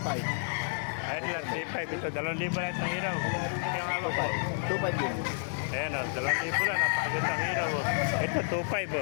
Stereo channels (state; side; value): silent; right; digital silence